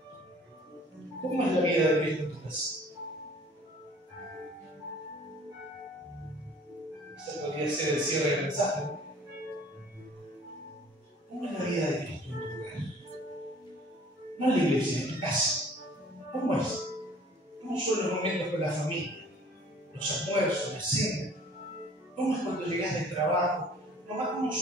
¿Cómo es la vida de Cristo en tu casa? Ese podría ser el cierre del mensaje. ¿Cómo es la vida de Cristo en tu hogar? No en la iglesia, en tu casa. ¿Cómo es? ¿Cómo son los momentos con la familia? Los almuerzos, la cena. ¿Cómo es cuando llegas del trabajo? Mamá, ¿cómo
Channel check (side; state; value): both; normal; correlation 0.52